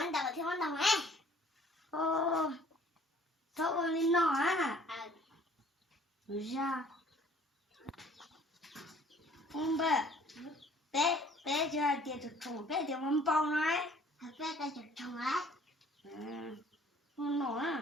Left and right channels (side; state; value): both; normal; correlation 0.55